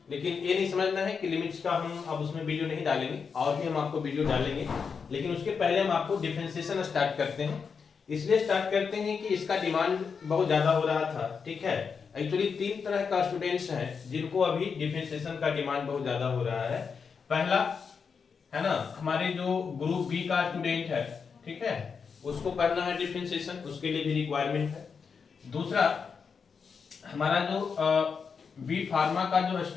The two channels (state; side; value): quieter; right; 5.8 dB